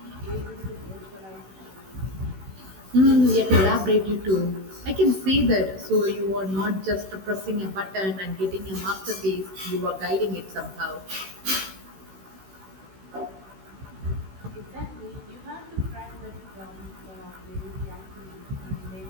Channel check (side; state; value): left; late; 16 ms